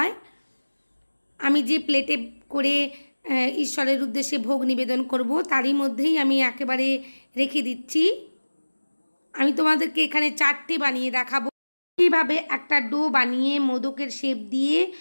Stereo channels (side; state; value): both; inverted; correlation -1.00